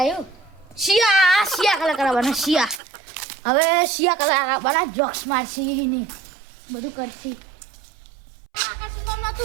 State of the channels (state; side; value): drops out; left; at 2.8 s